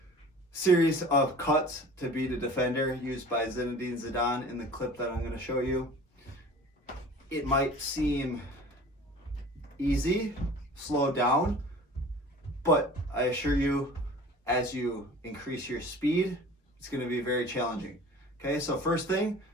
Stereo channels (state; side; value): normal; both; correlation 0.43